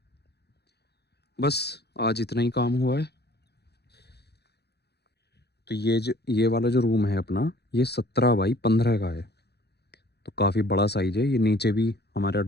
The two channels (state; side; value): late; right; 0.48 ms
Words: बस आज इतना ही काम हुआ है। तो ये वाला जो रूम है अपना, ये 17 बाई 15 का है, तो काफ़ी बड़ा साइज है। ये नीचे भी हमारा